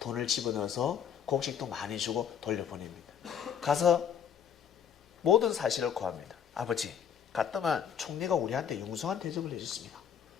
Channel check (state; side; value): quieter; right; 8.3 dB